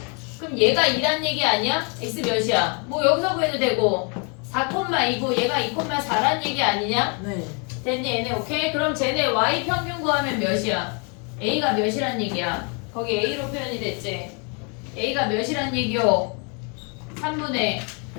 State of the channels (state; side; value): quieter; right; 35.8 dB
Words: 그럼 얘가 2란 얘기 아니야? x 몇이야? 뭐 여기서 구해도 되고 4,2고 얘가 2,4란 얘기 아니냐? 네. 됐니 얘네? 오케이? 그럼 쟤네 y 평균 구하면 몇이야? a가 몇이란 얘기야? 거기 a로 표현이 됐지? a가 몇이란 얘기요? 3분의